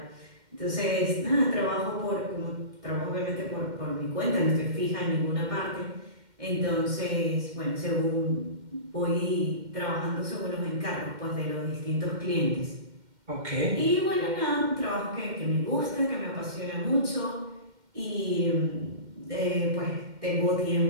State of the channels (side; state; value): left; late; 2.1 ms